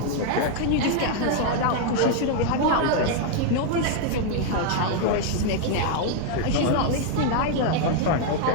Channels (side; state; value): both; different; correlation 0.00